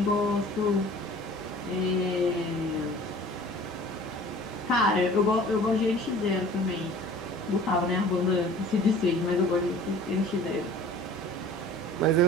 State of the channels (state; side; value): normal; both; correlation 0.46